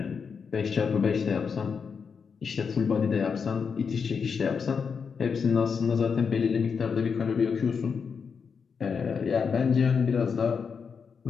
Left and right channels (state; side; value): quieter; right; 6.0 dB